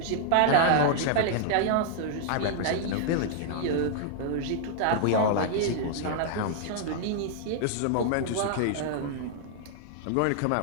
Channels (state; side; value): different; both; correlation -0.01